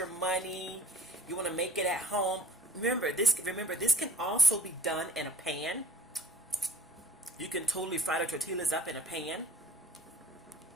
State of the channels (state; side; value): normal; both; correlation 0.52